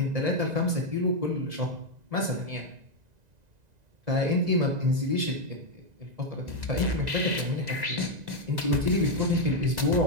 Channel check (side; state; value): left; late; 1.9 ms